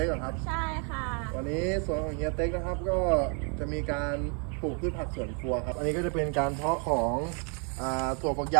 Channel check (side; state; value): left; quieter; 38.9 dB